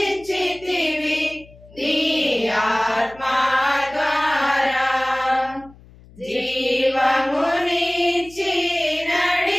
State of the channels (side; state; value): left; noise; hum, 24 dB below the sound